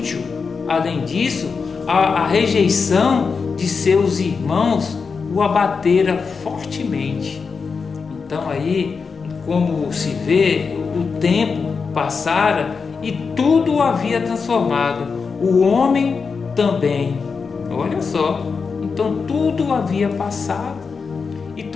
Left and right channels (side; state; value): right; quieter; 5.2 dB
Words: Além disso, a rejeição de seus irmãos o abatera fortemente. Então aí, como se vê, o tempo passara e tudo o havia transformado, o homem também. Olha só, então tudo havia passado e